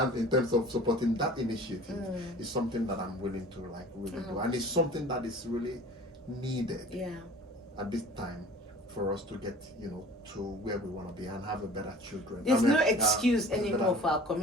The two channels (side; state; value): both; normal; correlation 0.44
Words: in terms of supporting that initiative, is something that I'm willing to really do. And it's something that is really needed at this time for us to get, to where we want to be and have a better children. There's no excuse anymore for our